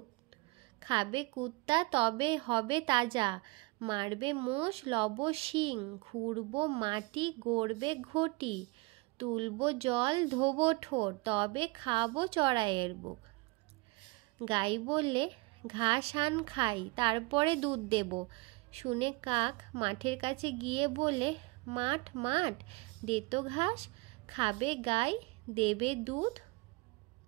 খাবে কুত্তা তবে হবে তাজা, মারবে মোষ লব শিং, খুঁড়বো মাটি, গড়বে ঘটি, তুলবো জল, ধোবো ঠোঁট, তবে খাবো চড়াইয়ের বুক। গাই বললে, ঘাস আন খাই, তারপরে দুধ দেব। শুনে কাক মাঠের কাছে গিয়ে বলে, মাঠ মাঠ, দে তো ঘাস, খাবে গাই, দেবে দুধ,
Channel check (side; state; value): left; quieter; 25.3 dB